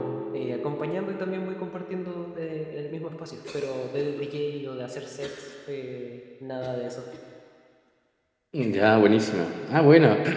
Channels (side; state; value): both; identical; correlation 1.00